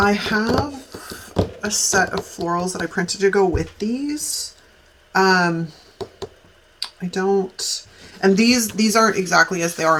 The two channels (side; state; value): both; identical; correlation 1.00